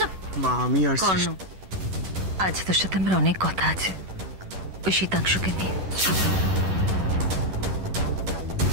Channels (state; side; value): late; left; 11 ms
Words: মা আমি আর কর্ণ, আজ তোর সাথে আমার অনেক কথা আছে ওই শীতাংশুকে নিয়ে।